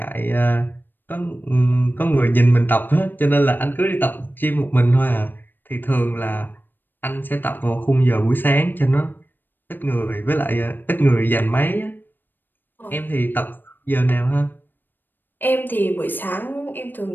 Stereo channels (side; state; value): right; late; 0.093 ms